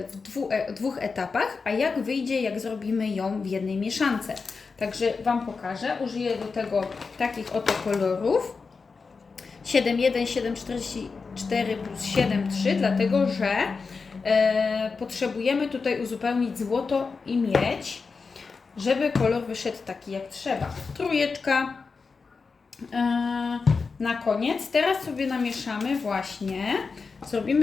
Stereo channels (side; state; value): right; quieter; 4.7 dB